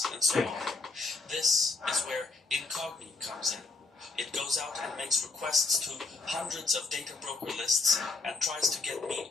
and so on. This is where Incogni comes in. It goes out and makes requests to hundreds of data broker lists and tries to get me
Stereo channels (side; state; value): right; quieter; 3.7 dB